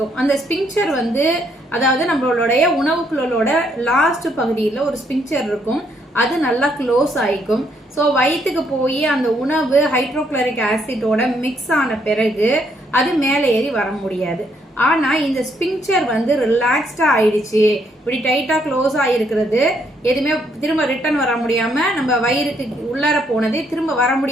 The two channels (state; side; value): normal; both; correlation 0.72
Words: அந்த ஸ்பிங்க்சர் அதாவது நம்மளுடைய உணவு குழலோட லாஸ்ட் பகுதியில் ஒரு ஸ்பிங்க்சர் இருக்கும். அது நல்லா க்ளோஸ் ஆயிக்கும். ஸோ வயிற்றுக்கு போய் அந்த உணவு ஹைட்ரோக்ளோரிக் ஆசிட்டோட மிக்ஸ் ஆன பிறகு அது மேலே ஏறி வர முடியாது. ஆனா இந்த ஸ்பிங்க்சர் ரிலாக்ஸ்டா ஆயிடுச்சு, இப்படி டைட்டா க்ளோஸ் ஆயிருக்கிறது, எதுவுமே திரும்ப ரிட்டர்ன் வர முடியாம நம்ம வயிறுக்கு உள்ளார போனதே திரும்ப வர